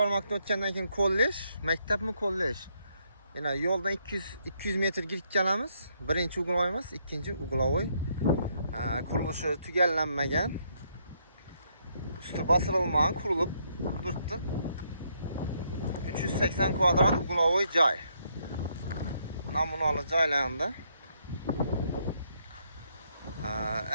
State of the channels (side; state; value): both; inverted; correlation -0.73